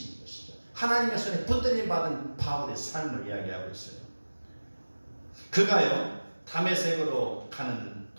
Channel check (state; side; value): inverted; both; correlation -1.00